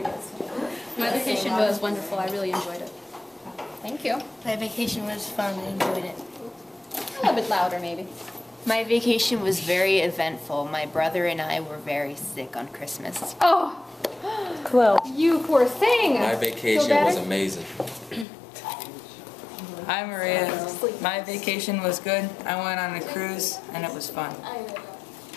My vacation was wonderful. I really enjoyed it. Thank you. My vacation was fun. I enjoyed it. A little bit louder, maybe. My vacation was very eventful. My brother and I were very sick on Christmas. Oh, Chloe. you poor thing. My vacation was amazing. Hi Maria. My vacation was good. I went on a cruise and it was fun.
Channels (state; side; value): drops out; right; at 18.2 s